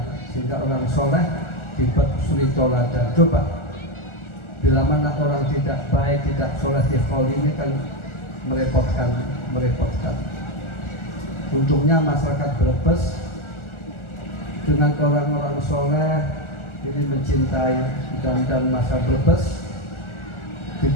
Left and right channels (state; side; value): late; right; 1.4 ms